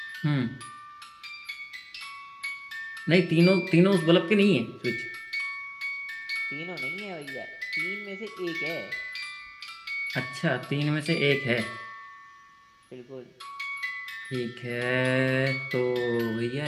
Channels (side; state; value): both; identical; correlation 1.00